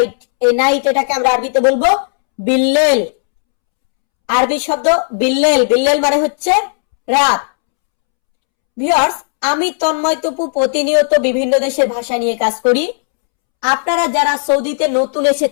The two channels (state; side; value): silent; right; 71 dB below the other